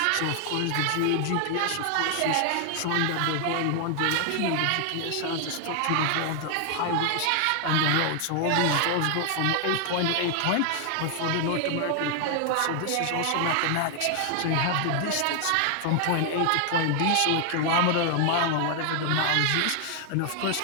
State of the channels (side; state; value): both; different; correlation 0.00